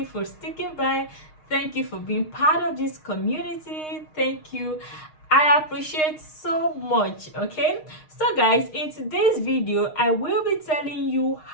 for sticking by. Thank you for being part of this community. Thank you. I appreciate so much. Okay, so guys, in today's video I will be telling you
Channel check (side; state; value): right; late; 6.5 ms